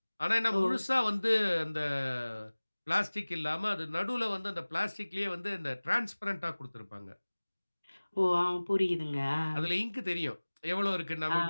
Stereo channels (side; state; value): both; inverted; correlation -1.00